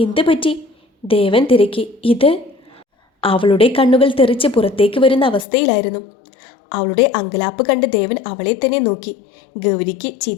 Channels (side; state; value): right; drops out; at 5.5 s